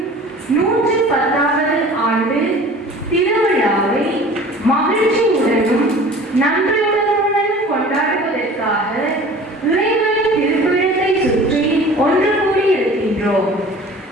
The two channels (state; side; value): normal; both; correlation 0.43